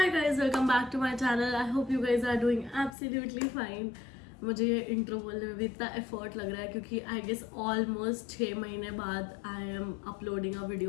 guys, welcome back to my channel. I hope you guys are doing absolutely fine. मुझे ये इंट्रो बोलने में भी इतना एफर्ट लग रहा है क्योंकि आई गेस ऑलमोस्ट 6 महीने बाद I am uploading a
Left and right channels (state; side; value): drops out; right; at 3.0 s